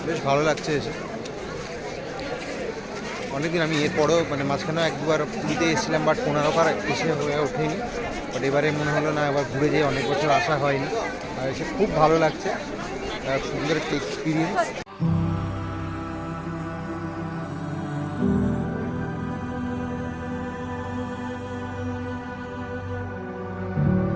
বেশ ভালো লাগছে এসে। অনেকদিন আমি এরপরেও মানে মাঝখানেও এক দুবার পুরীতে এসেছিলাম, বাট কোণার্ক আর এসে হয়ে ওঠেনি। বাট এবারে মনে হলো না, এবার ঘুরে যেয়ে অনেক বছর আসা হয়নি, আর এসে খুব ভালো লাগছে, সুন্দর একটা এক্সপিরিয়েন্স।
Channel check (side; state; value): both; identical; correlation 1.00